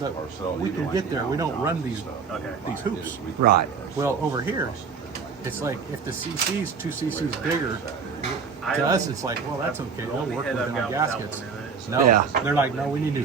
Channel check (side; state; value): left; quieter; 5.6 dB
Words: we can get there. We don't run these hoops. Right. Well, over here, it's like if the cc's 2 cc's bigger, to us it's like, well, that's okay. They'll work with it on gaskets. No, Yeah. they're like, no, we need new